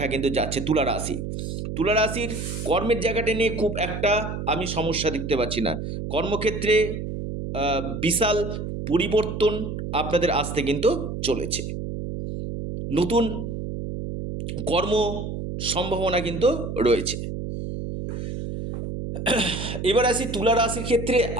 কিন্তু যাচ্ছে। তুলা রাশি, তুলা রাশির কর্মের জায়গাটা নিয়ে খুব একটা আমি সমস্যা দেখতে পাচ্ছি না। কর্মক্ষেত্রে বিশাল পরিবর্তন আপনাদের আসতে কিন্তু চলেছে, নতুন কর্ম সম্ভাবনা কিন্তু রয়েছে। এবার আসি তুলা রাশির ক্ষেত্রে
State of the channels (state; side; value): noise; right; hum, 5 dB below the sound